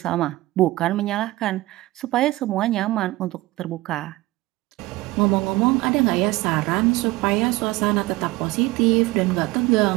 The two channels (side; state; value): left; quieter; 19.3 dB